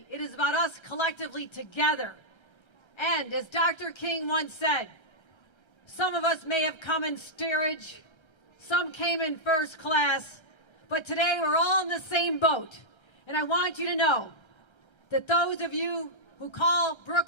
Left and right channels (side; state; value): right; late; 1.3 ms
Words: it is about us collectively together. And as Dr. King once said, some of us may have come in steerage, some came in first class, but today we're all in the same boat. And I want you to know that those of you who call